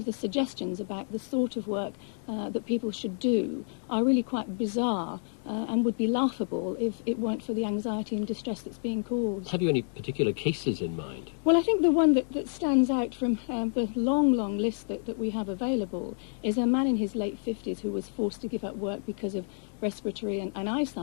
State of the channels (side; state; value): right; silent; digital silence